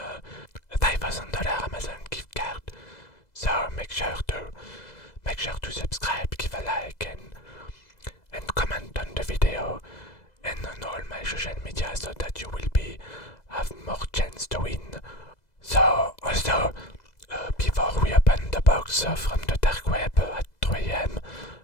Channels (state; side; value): late; right; 2.0 ms